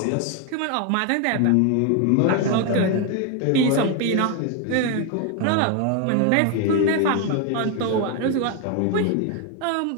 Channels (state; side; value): different; both; correlation 0.01